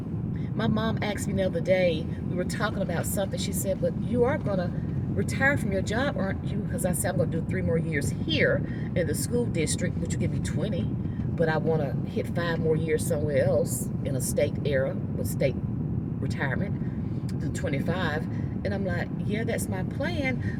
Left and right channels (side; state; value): both; identical; correlation 1.00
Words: My mom asked me the other day, we were talking about something. She said, but you are going to retire from your job, aren't you? Because I said, I'm going to do 3 more years here in the school district, which will give me 20. But I want to hit 5 more years somewhere else in a state era with state retirement to 25. And I'm like, yeah, that's my